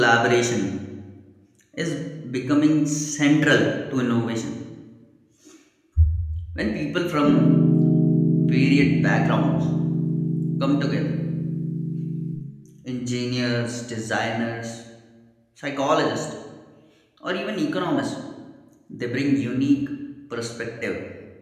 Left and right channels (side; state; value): both; identical; correlation 1.00